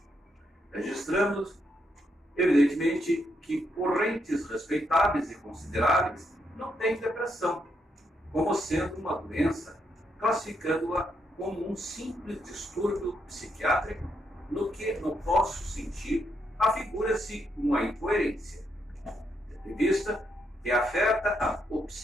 Registramos, evidentemente, que correntes respeitáveis e consideráveis não têm depressão, como sendo uma doença, classificando-a como um simples distúrbio psiquiátrico, no que, no nosso sentido, afigura-se uma incoerência, tendo em vista que afeta o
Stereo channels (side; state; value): both; normal; correlation 0.78